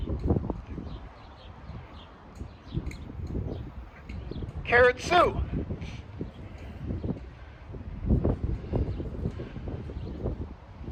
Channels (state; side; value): identical; both; correlation 1.00